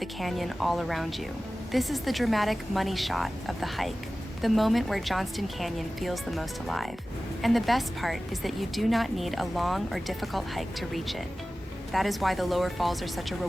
canyon all around you. This is the dramatic money shot of the hike, the moment where Johnston Canyon feels the most alive. And the best part is that you do not need a long or difficult hike to reach it. That is why the lower falls are such a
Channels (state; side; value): normal; both; correlation 0.96